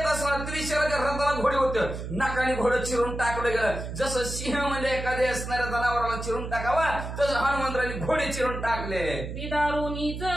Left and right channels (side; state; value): right; noise; hum, 7 dB below the sound